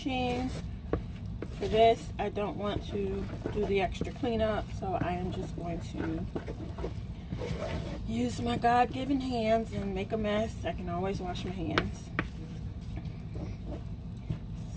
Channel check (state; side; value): identical; both; correlation 1.00